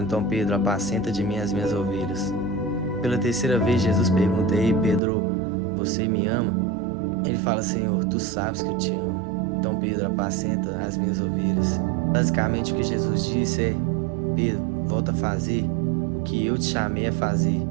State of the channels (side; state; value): left; drops out; at 5.0 s